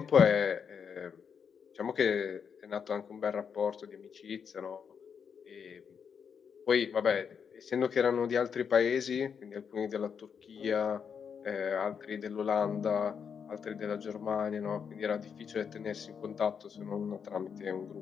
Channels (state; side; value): quieter; right; 6.8 dB